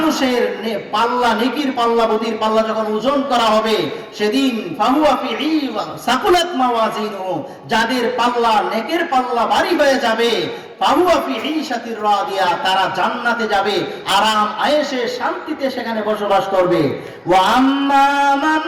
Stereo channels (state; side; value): identical; both; correlation 1.00